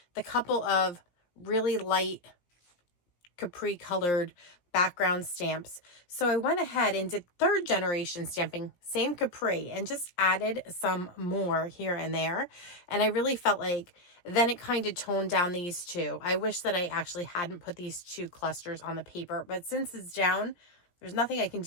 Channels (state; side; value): late; right; 17 ms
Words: the couple of really light Capri colored background stamps. So I went ahead and did 3rd generation stamping, same Capri, and just added some more here and there. And I really felt like then it kind of toned down these two. I wish that I actually hadn't put these 2 clusters on the paper, but since it's down, there's nothing I can